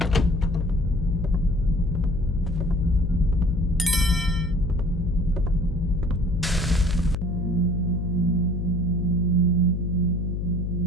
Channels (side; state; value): left; noise; hum, 2 dB below the sound